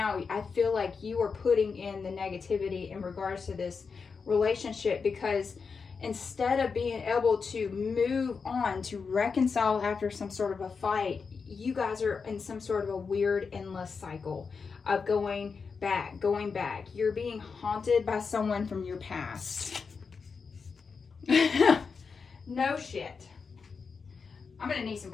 I feel like you are putting in the negativity in regards to this relationship, because instead of being able to move on, to reconcile after some sort of a fight, you guys are in some sort of a weird endless cycle of going back. You're being haunted by someone from your past. No shit. I'm gonna need some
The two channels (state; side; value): quieter; right; 5.3 dB